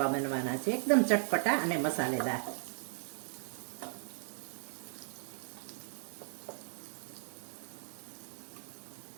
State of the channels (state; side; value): silent; left; 53 dB below the other